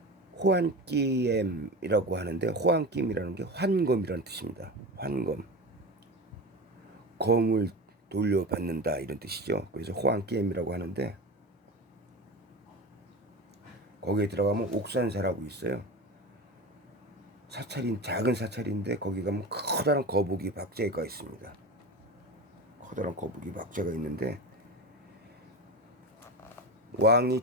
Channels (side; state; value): both; normal; correlation 0.27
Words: 호안끼엠이라고 하는데, 호안끼엠이라는 게 환검이라는 뜻입니다. 환검, 검을 돌려받는다 이런 뜻이죠. 그래서 호안끼엠이라고 하는데, 거기에 들어가면 옥산사라고 있어요. 사찰인, 작은 사찰인데 거기 가면 커다란 거북이 박제가 있습니다. 커다란 거북이 박제가 있는데,